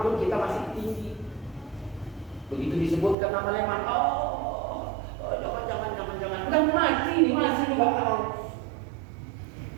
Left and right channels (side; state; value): left; drops out; at 3.2 s